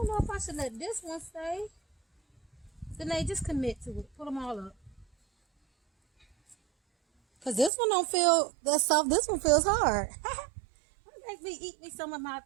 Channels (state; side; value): drops out; left; at 7.7 s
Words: know if I should let this one stay. Then they just commit to it. Put them all up. Cause this one don't feel that soft. This one feels hard. Make me eat me some of my.